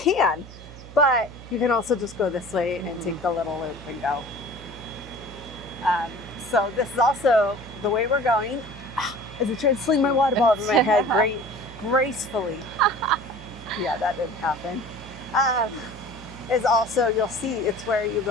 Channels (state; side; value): noise; right; hum, 17 dB below the sound